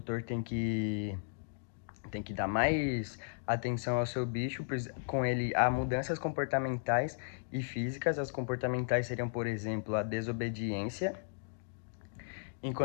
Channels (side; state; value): right; silent; digital silence